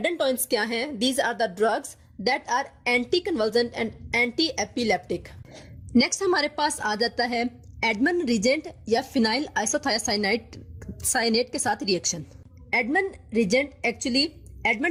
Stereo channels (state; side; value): identical; both; correlation 1.00